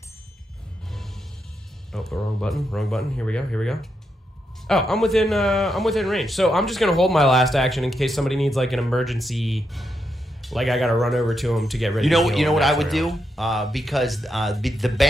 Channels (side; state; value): both; normal; correlation 0.83